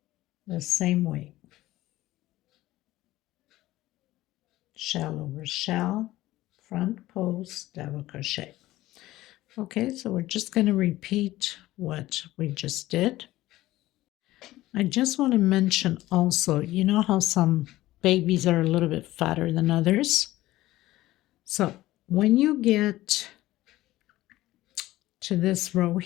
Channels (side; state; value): right; quieter; 16.4 dB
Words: the same way. Shell over shell, front post, double crochet. Okay, so we're just going to repeat what we just did. I just want to mention also, you know how some babies are a little bit fatter than others? So when you get to this row